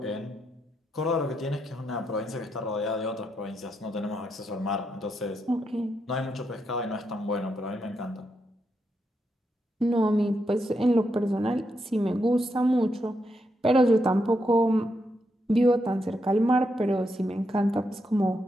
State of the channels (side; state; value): both; normal; correlation 0.82